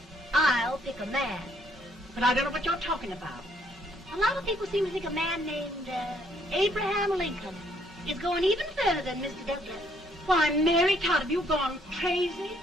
I'll pick a man. But I don't know what you're talking about. A lot of people seem to think a man named Abraham Lincoln is going even further than Mr. Douglas. Why, Mary Todd, have you gone crazy?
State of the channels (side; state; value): both; normal; correlation 0.67